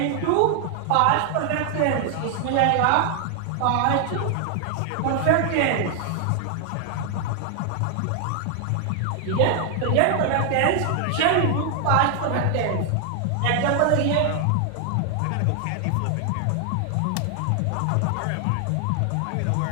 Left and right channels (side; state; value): both; different; correlation 0.00